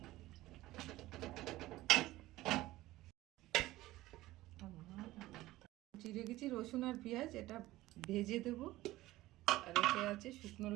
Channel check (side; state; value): left; quieter; 17.2 dB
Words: চিড়ে গেছি রসুন আর পেঁয়াজ, এটা ভেজে দেবো। আর এতে আছে শুকনো